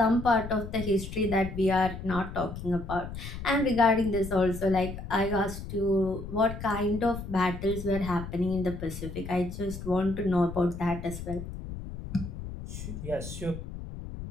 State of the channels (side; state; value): left; noise; rumble, 9 dB below the sound